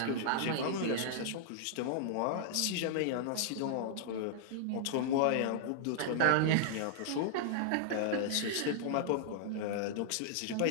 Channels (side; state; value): both; different; correlation -0.01